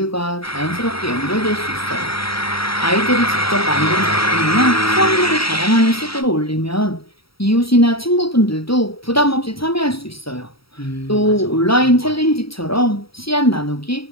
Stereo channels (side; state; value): right; late; 0.75 ms